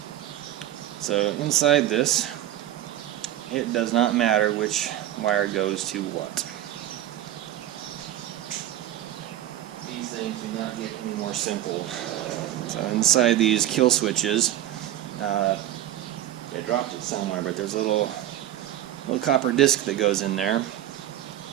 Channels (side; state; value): left; quieter; 12.7 dB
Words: So inside this, it does not matter which wire goes to what. These things do not get any more simple. So inside these kill switches, I dropped it somewhere, but there's a little copper disc that goes in there,